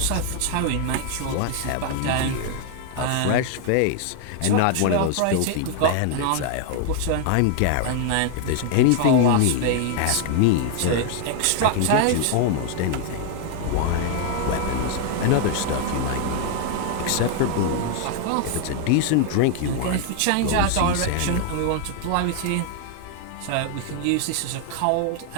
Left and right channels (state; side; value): different; both; correlation 0.00